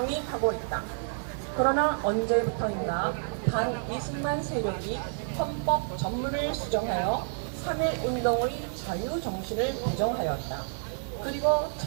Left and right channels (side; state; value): left; silent; digital silence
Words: 하고 있다. 그러나 언제부터인가 반 이승만 세력이 헌법 전문을 수정하여 3.1운동의 자유정신을 부정하였다. 그리고